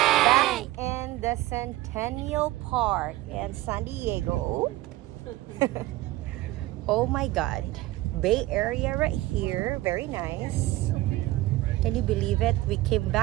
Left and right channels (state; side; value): quieter; left; 17.4 dB